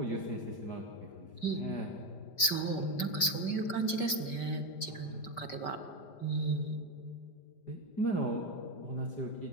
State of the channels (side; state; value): right; late; 5.1 ms